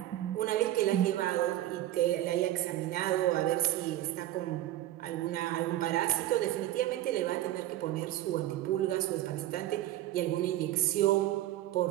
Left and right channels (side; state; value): left; quieter; 14.1 dB